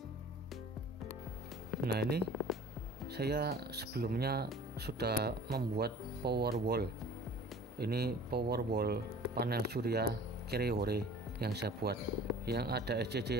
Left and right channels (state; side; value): normal; both; correlation 0.45